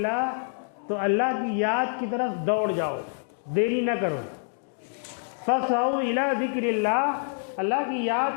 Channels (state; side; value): silent; right; digital silence